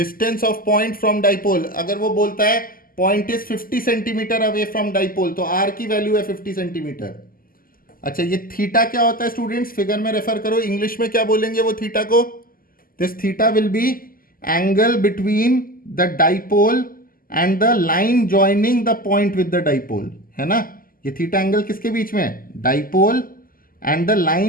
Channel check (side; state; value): right; late; 0.42 ms